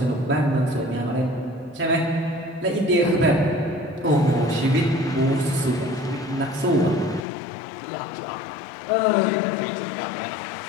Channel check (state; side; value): drops out; right; at 7.2 s